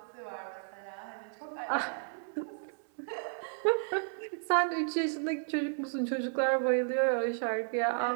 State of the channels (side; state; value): left; silent; digital silence